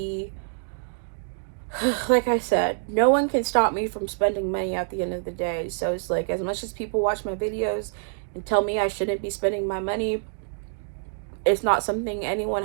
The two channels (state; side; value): silent; left; digital silence